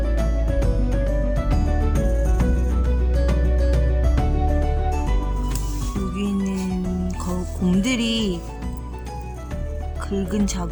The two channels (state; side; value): identical; both; correlation 1.00